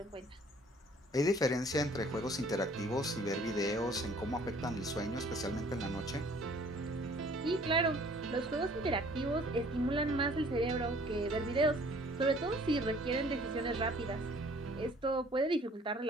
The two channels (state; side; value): normal; both; correlation 0.55